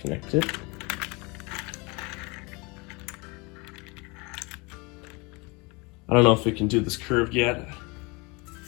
it. I don't know if we can do this curved yet.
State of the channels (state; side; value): quieter; right; 27.7 dB